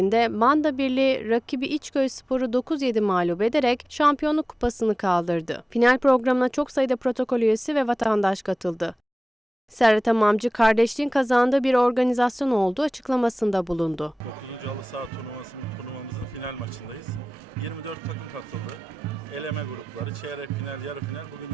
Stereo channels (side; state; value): both; normal; correlation 0.96